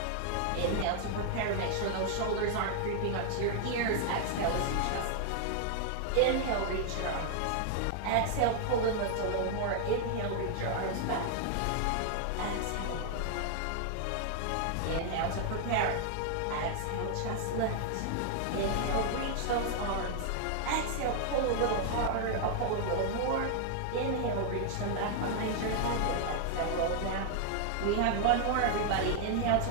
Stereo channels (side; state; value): both; different; correlation 0.00